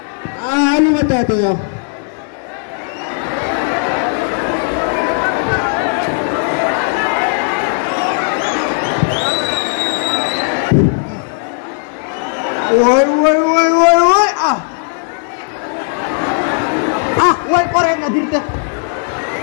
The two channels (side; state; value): right; silent; 57 dB below the other